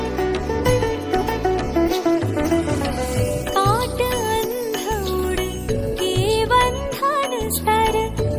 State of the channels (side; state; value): both; identical; correlation 1.00